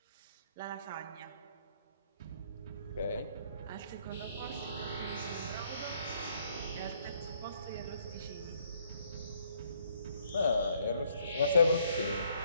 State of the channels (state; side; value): inverted; both; correlation -0.67